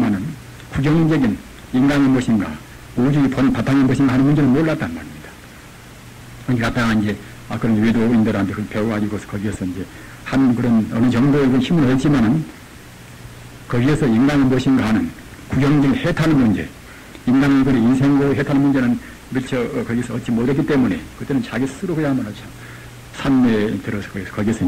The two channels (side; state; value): both; identical; correlation 1.00